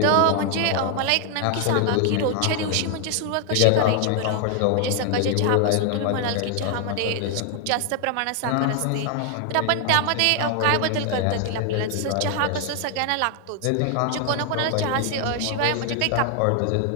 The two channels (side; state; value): both; different; correlation 0.00